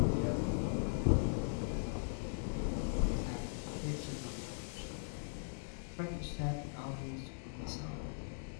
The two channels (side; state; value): right; silent; digital silence